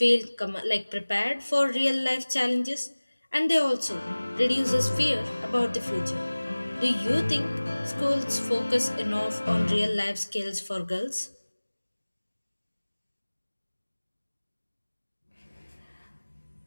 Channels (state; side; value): inverted; both; correlation -1.00